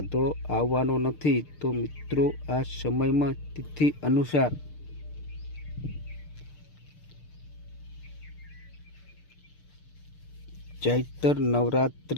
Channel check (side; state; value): right; late; 6.6 ms